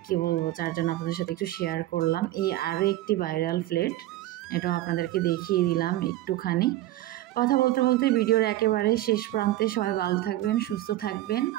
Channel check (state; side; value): quieter; left; 15.1 dB